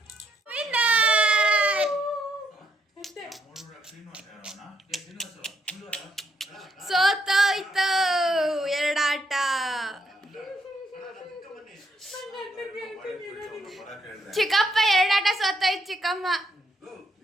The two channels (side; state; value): both; normal; correlation 0.74